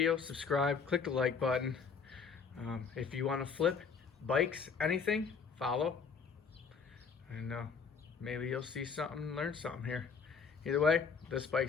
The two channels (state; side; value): quieter; right; 5.7 dB